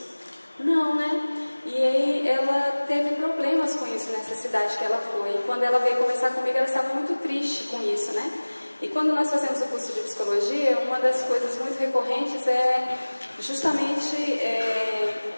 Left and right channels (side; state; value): both; inverted; correlation -1.00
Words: Não, né? E aí ela teve problemas com isso nessa cidade que ela foi. E quando ela veio conversar comigo, ela estava muito triste com isso, né? E quando nós fazemos o curso de psicologia, uma das coisas muito recorrentes é justamente